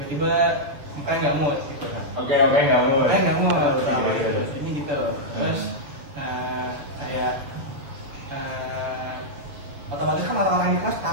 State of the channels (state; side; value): late; left; 7.1 ms